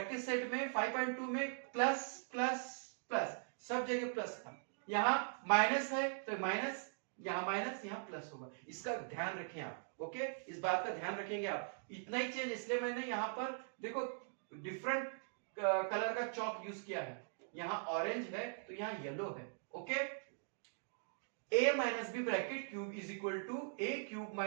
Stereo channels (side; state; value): left; silent; digital silence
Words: सेट में 5.2 में प्लस प्लस प्लस सब जगह प्लस था. यहां माइनस है तो माइनस, यहां प्लस होगा. इसका ध्यान रखें आप. ओके, इस बात का ध्यान रखेंगे आप. इतना ही चेंज इसलिए मैंने यहां पर देखो डिफरेंट कलर का चॉक यूज किया है. यहां ऑरेंज है तो यहां येलो है. Okay, a minus B bracket cube is equal to a cube